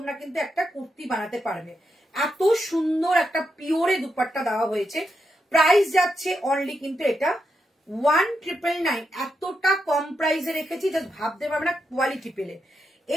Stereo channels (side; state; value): both; normal; correlation 0.84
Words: কিন্তু একটা কুর্তি বানাতে পারবে, এত সুন্দর একটা পিওরে দুপাট্টা দেওয়া হয়েছে। প্রাইস যাচ্ছে অনলি কিন্তু এটা 1999। এতটা কম প্রাইসে রেখেছি জাস্ট ভাবতে পারবে না কোয়ালিটি পেলে।